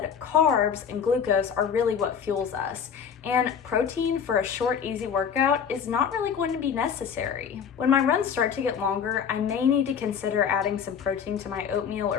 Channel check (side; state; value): right; quieter; 7.3 dB